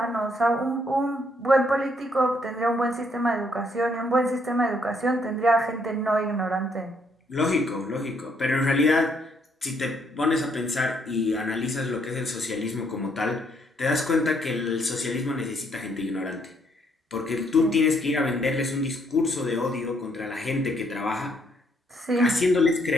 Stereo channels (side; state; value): both; normal; correlation 0.71